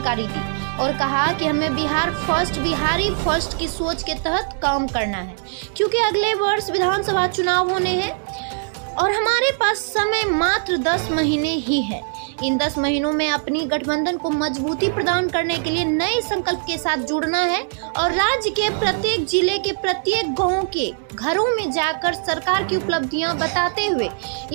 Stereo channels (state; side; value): silent; left; digital silence